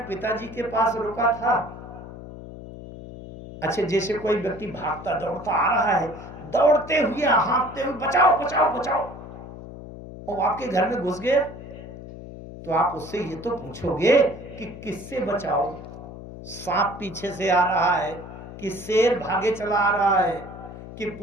पिताजी के पास रुका था। अच्छा जैसे कोई व्यक्ति भागता दौड़ता आ रहा है, दौड़ते हुए हाँफते हुए बचाओ बचाओ बचाओ, और आपके घर में घुस गया, तो आप उससे ये तो पूछोगे कि किससे बचाओ? सांप पीछे से आ रहा है, कि शेर भागे चला आ रहा है, कि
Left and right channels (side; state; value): left; noise; hum, 13 dB below the sound